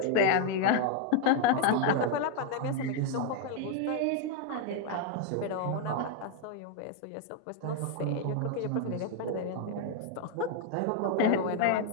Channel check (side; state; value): both; different; correlation 0.00